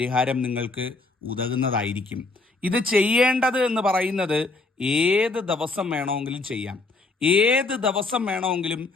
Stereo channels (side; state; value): right; quieter; 3.5 dB